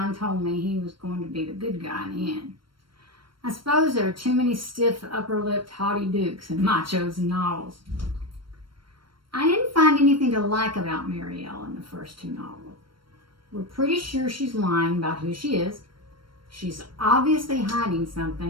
told me he was going to be the good guy in the end. I suppose there are too many stiff, upper-lipped, haughty dukes in my chosen novels. I didn't find anything to like about Marielle in the first two novels. We're pretty sure she's lying about who she is. She's obviously hiding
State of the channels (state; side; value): late; left; 0.73 ms